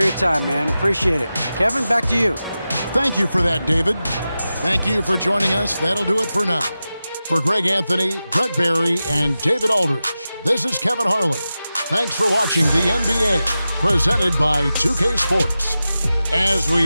time, man. Appreciate it. Kevin, back to you. Thank you for that, David. Thank you for joining us. That'll do it for now. For Greg Anthony, Brett Barry, and David Aldridge, this is Kevin Harlan. Thanks for watching the NBA, presented by 2K Sports. As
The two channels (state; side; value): inverted; both; correlation -0.93